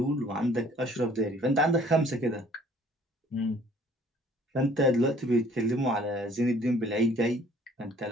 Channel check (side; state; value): both; normal; correlation 0.56